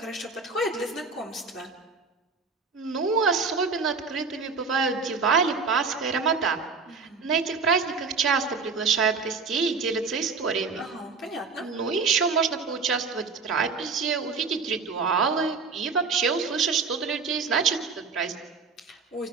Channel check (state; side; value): quieter; left; 4.9 dB